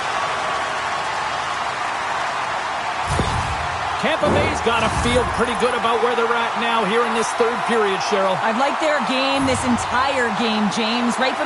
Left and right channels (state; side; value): identical; both; correlation 1.00